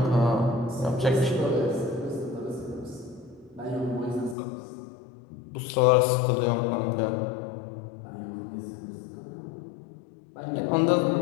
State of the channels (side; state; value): right; drops out; at 4.4 s